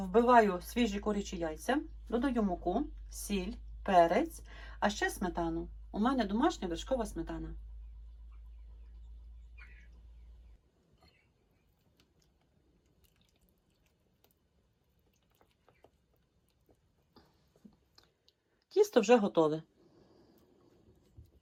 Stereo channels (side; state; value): both; identical; correlation 1.00